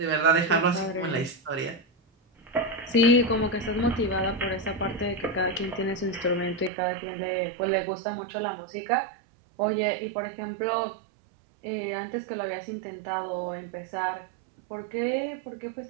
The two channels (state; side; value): drops out; left; at 6.7 s